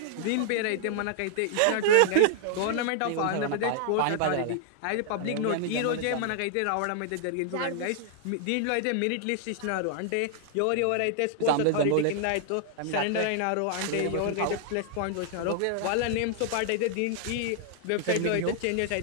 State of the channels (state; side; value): different; both; correlation -0.01